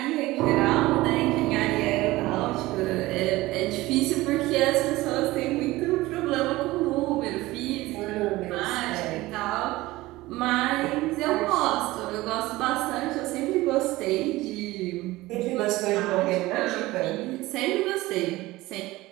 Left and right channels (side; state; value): left; quieter; 18.8 dB